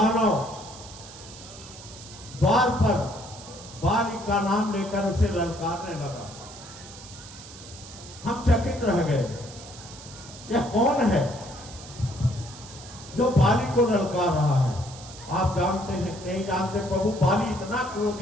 द्वार पर बाली का नाम लेकर उसे ललकारने लगा। हम चकित रह गए, यह कौन है जो बाली को ललकार रहा है? आप जानते हैं नहीं जानते प्रभु, बाली इतना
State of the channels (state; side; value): noise; right; hiss, 16 dB below the sound